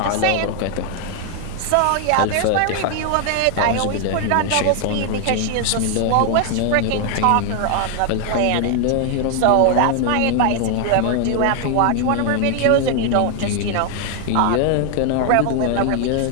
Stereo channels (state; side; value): different; both; correlation 0.00